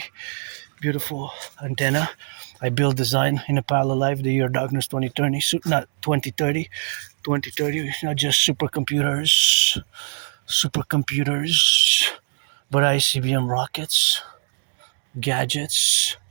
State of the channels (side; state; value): left; silent; digital silence